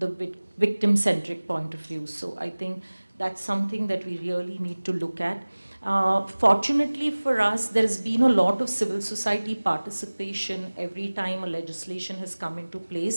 victim-centric point of view. So I think that's something that we really need to look at. Fortunately for us, there's been a lot of civil society participation every time a legislation has come into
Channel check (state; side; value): inverted; both; correlation -1.00